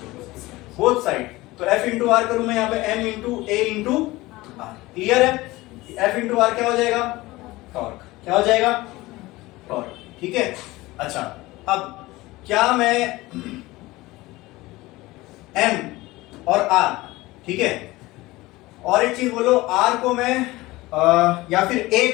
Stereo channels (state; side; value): quieter; right; 19.7 dB